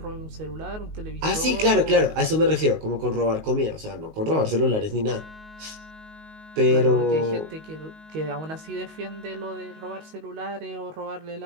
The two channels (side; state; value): left; late; 19 ms